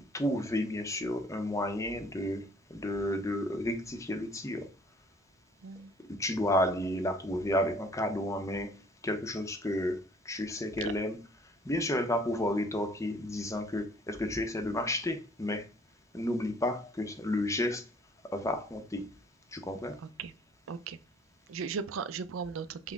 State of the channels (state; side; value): normal; both; correlation 0.57